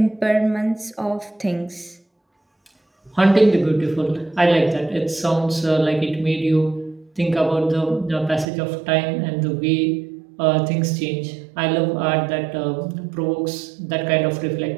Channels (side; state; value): left; drops out; at 8.5 s